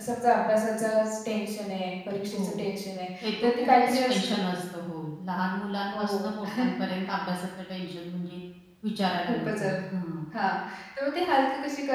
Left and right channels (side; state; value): both; identical; correlation 1.00